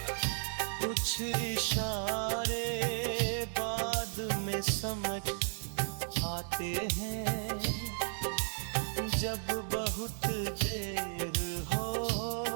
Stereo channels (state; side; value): silent; left; digital silence